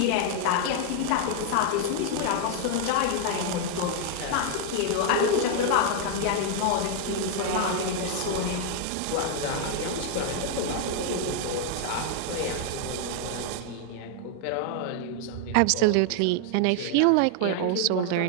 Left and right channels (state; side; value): different; both; correlation 0.00